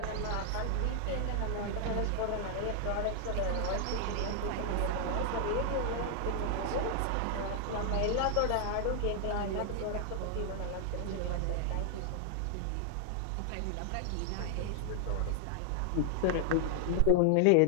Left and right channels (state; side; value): different; both; correlation 0.00